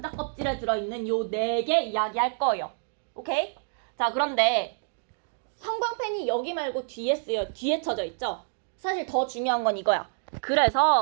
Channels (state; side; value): silent; left; digital silence